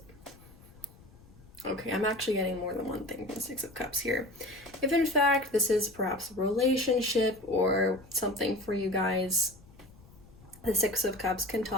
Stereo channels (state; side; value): noise; left; rumble, 24 dB below the sound